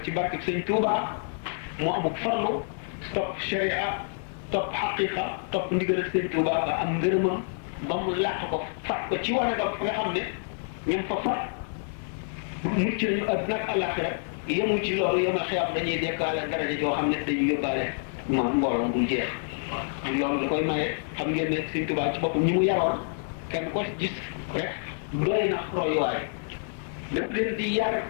ci barke sëñ Tuubaa mu amuk farlu topp sharia topp xaqiqa topp ndigal sëñ Tuubaa ba am ngërëmam ba mu làq ko fat ko ci wanagam fa nga xam ne ñoom fa fat mucc nañu àdduna ak àllaaxira yemu ci loolu yemal xiyaam dañuy dekkaale daraja joo xam ne dañuy yóbbaale mbooloo bul jeex loolu da koy maye xam ngeen ne sëñ Tuubaa ci boppam ñi mu yaroon kenn ko gis rek doy na royuwaay daf leen di yar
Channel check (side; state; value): right; silent; digital silence